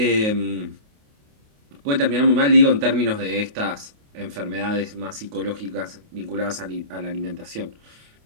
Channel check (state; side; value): late; left; 28 ms